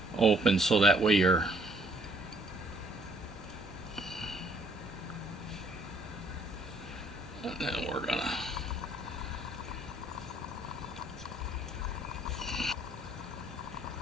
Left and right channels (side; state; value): both; normal; correlation 0.64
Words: open, so that way you're and then we're gonna